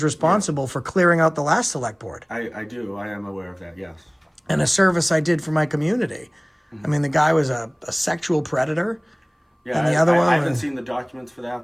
responsible for clearing out the last select board. I do. I am aware of that, yes. And a service I did for my community. I mean, the guy was a sexual predator. Yeah, And the other one I haven't was- seen the documents for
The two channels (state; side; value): identical; both; correlation 1.00